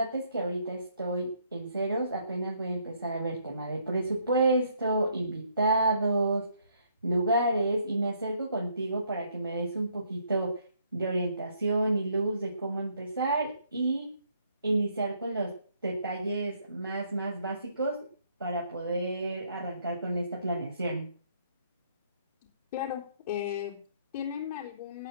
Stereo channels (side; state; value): both; inverted; correlation -0.69